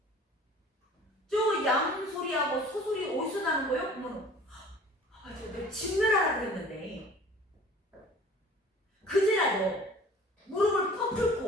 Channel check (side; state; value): both; normal; correlation 0.47